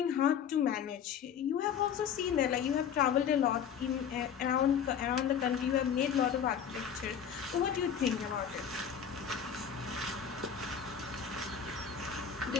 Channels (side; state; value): right; quieter; 8.0 dB